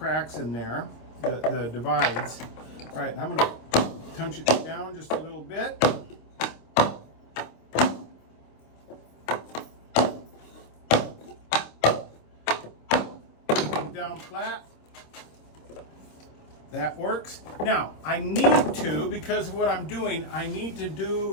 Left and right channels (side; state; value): right; late; 26 ms